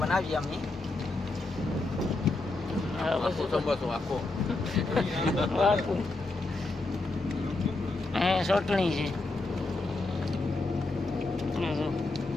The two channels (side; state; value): right; quieter; 3.1 dB